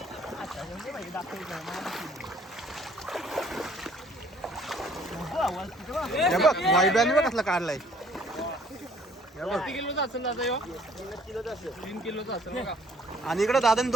हे बघ वैभ्याने बघ कसला काढलाय. आणि इकडे दादाने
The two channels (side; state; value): both; normal; correlation 0.59